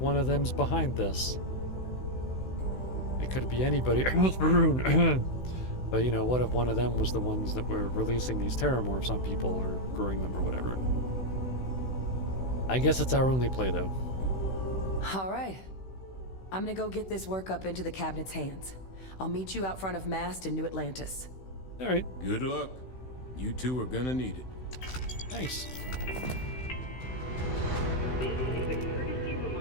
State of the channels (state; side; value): late; right; 16 ms